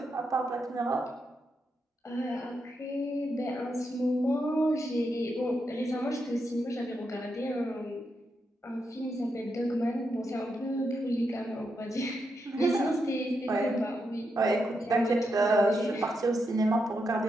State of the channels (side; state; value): both; normal; correlation 0.83